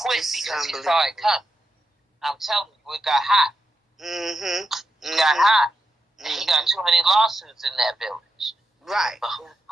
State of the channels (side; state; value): both; normal; correlation 0.86